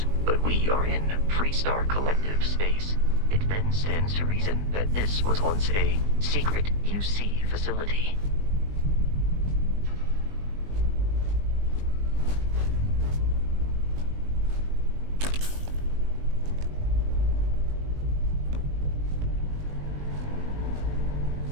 but we are in Freestar Collective space. It then stands to reason that this was once a secret UC facility.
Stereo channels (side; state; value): left; late; 20 ms